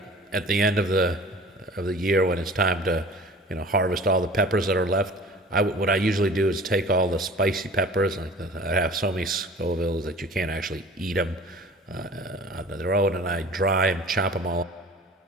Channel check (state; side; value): normal; both; correlation 0.44